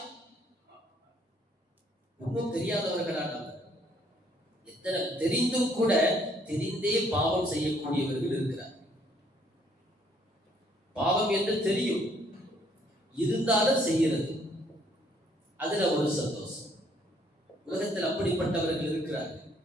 ஒன்றும் தெரியாதவர்களா நாம்? எத்தனை தெரிந்தும் கூட தெரிந்தே பாவம் செய்யக்கூடியவர்கள் இருக்கிறார். பாவம் என்று தெரியும், இருந்தாலும் செய்கிறது, அதுல ஒரு சந்தோஷம். உலகத்தில் அப்படிப்பட்டவர்கள் இருக்கிறார்கள்.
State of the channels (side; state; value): both; normal; correlation 0.65